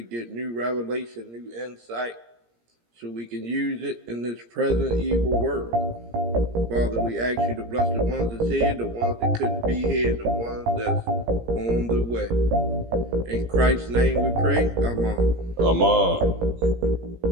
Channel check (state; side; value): late; left; 17 ms